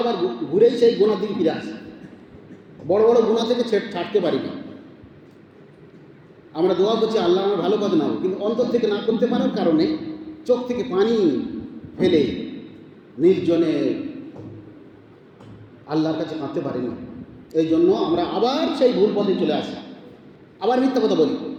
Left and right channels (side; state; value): both; identical; correlation 1.00